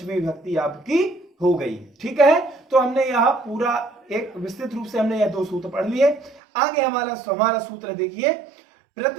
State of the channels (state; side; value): drops out; left; at 6.4 s